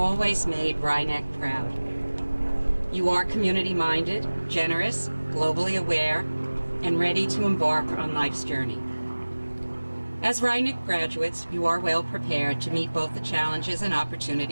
made Rhinebeck proud. You are community-minded, generous, globally aware, and ready to embark on life's journey. As Rhinebeck graduates, you are well prepared to meet both the challenges and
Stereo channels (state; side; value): inverted; both; correlation -1.00